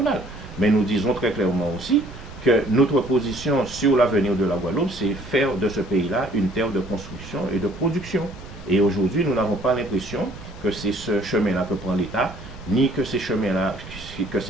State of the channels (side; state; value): right; noise; rumble, 16 dB below the sound